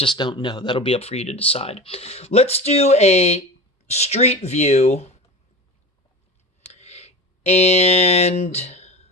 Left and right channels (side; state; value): both; normal; correlation 0.31